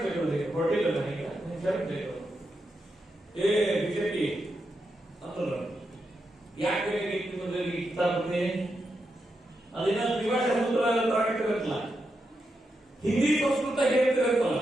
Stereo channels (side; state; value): both; normal; correlation 0.85